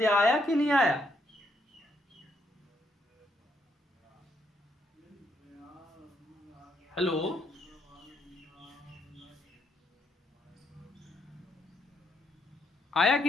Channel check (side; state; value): both; normal; correlation 0.75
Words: आया कि नहीं आया? हेलो, आया